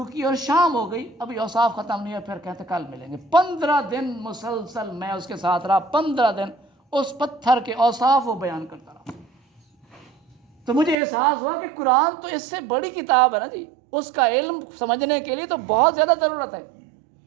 کی, اور شام ہو گئی, ابھی اوصاف ختم نہیں ہے. پھر کہتے کل ملیں گے. 15 دن مسلسل میں اس کے ساتھ رہا, 15 دن اس پتھر کے اوصاف وہ بیان کرتا رہا. تو مجھے احساس ہوا کہ قرآن تو اس سے بڑی کتاب ہے نا جی, اس کا علم سمجھنے کے لیے تو بہت زیادہ ضرورت ہے.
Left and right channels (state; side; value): drops out; left; at 11.0 s